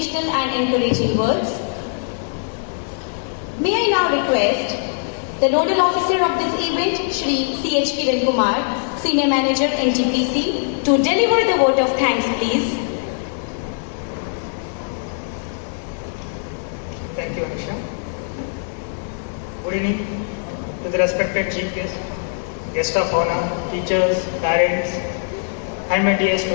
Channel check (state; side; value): silent; right; digital silence